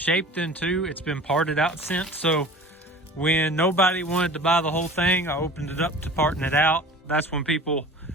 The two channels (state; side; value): normal; both; correlation 0.41